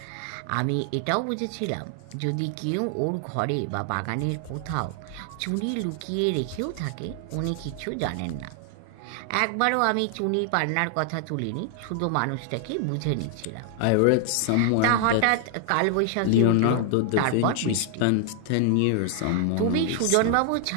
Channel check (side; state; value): both; different; correlation 0.00